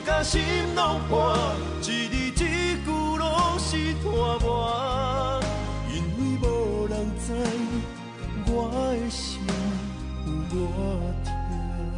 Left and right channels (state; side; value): identical; both; correlation 1.00